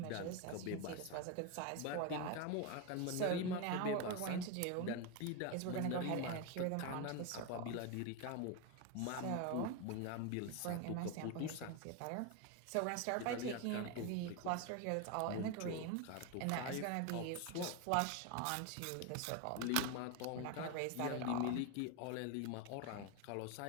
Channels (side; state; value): both; different; correlation 0.02